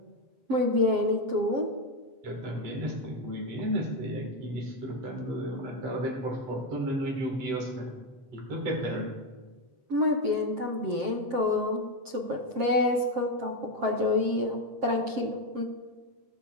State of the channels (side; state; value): left; late; 7.6 ms